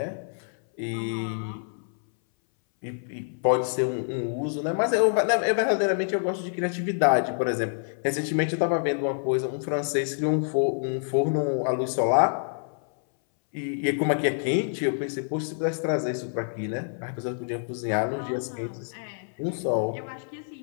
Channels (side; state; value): right; silent; 60 dB below the other